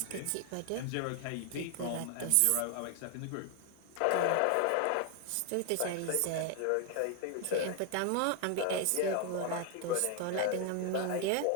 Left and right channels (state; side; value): different; both; correlation 0.00